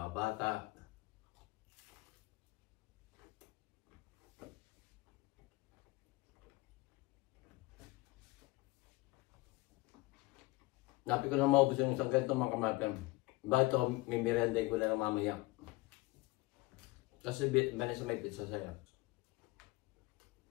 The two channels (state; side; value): quieter; right; 22.0 dB